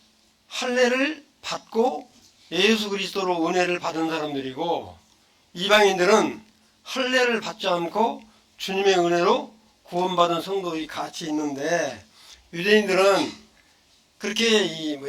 할례를 받고 예수 그리스도로 은혜를 받은 사람들이고, 이방인들은 할례를 받지 않고 주님의 은혜로 구원받은 성도들이 같이 있는데, 유대인들은 그렇게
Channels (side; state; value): both; identical; correlation 1.00